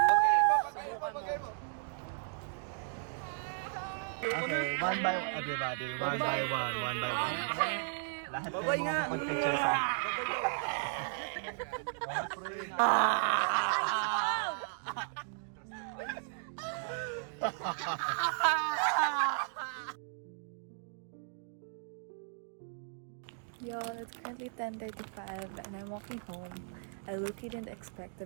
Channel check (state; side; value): silent; left; digital silence